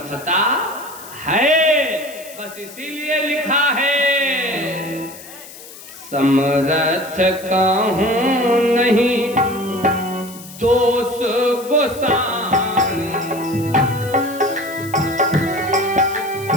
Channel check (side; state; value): left; noise; hiss, 17 dB below the sound